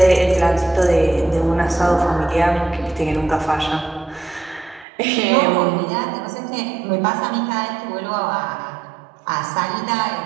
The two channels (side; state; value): left; drops out; at 4.9 s